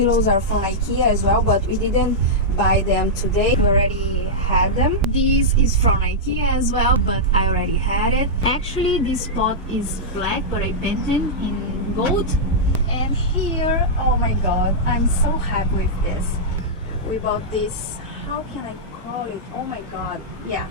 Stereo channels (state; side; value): normal; both; correlation -0.09